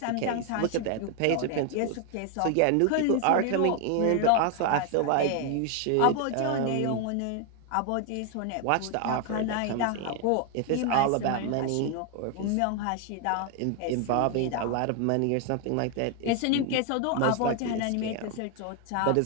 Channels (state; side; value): different; both; correlation 0.01